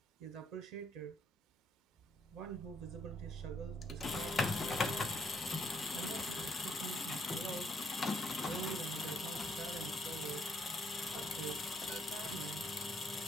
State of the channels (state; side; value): normal; both; correlation 0.71